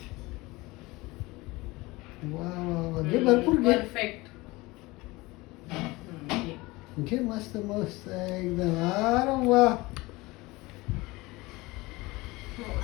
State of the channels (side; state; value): right; quieter; 21.8 dB